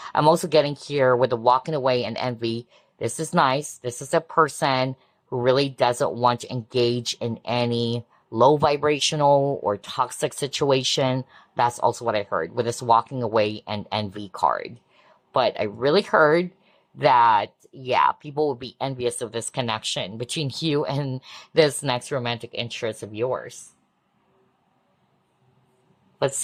I'm also getting here with the walking away and envy. This is nice. This is a person who really doesn't want to engage in any low vibrational or toxic situation. That's also what I heard with this walking away and envy card. But I really heard that, yeah, people will be envious of this connection between you and this next romantic interest of yours. Let's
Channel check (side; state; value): both; identical; correlation 1.00